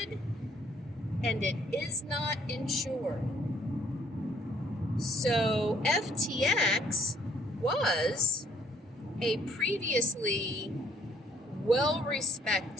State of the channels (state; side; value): normal; both; correlation 0.64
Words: and it is not insured. So FTX was a previously